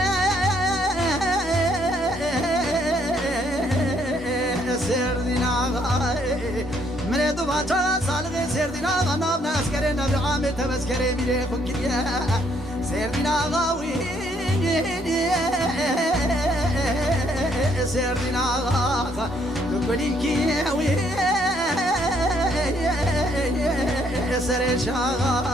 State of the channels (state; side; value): normal; both; correlation 0.68